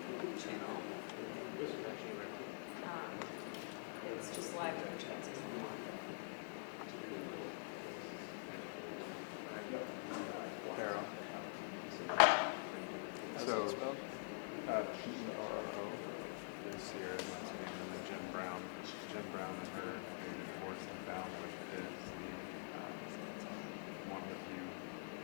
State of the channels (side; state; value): right; silent; digital silence